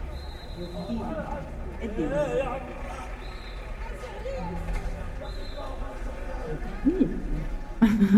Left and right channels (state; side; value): identical; both; correlation 1.00